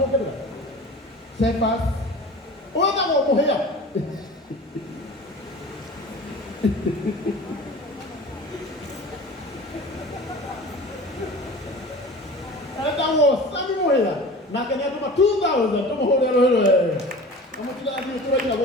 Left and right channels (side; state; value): both; normal; correlation 0.38